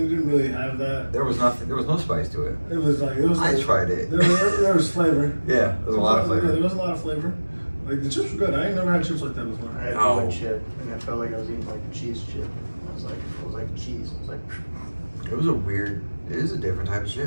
didn't really have that. There was nothing. There was no spice to it. It was like I tried it. There was flavor. Yeah, there was a lot of flavor. Yeah, there was a lot of flavor. Like the chips were good. I ain't never had chips like that before. I had one chip, and I felt like I was eating like a cheese chip. It was like cheese. I was like. It was a weird. It is a different type of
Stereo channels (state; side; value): inverted; both; correlation -1.00